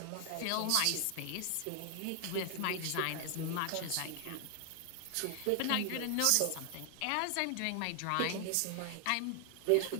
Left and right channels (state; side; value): different; both; correlation 0.00